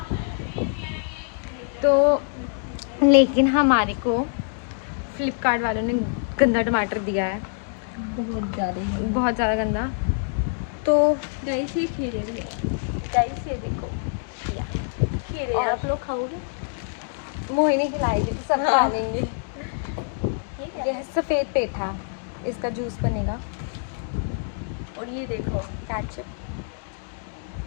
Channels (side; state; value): right; silent; digital silence